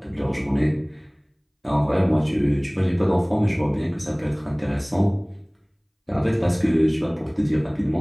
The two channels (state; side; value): identical; both; correlation 1.00